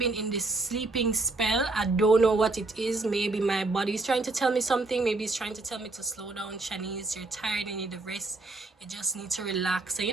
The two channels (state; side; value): quieter; left; 3.3 dB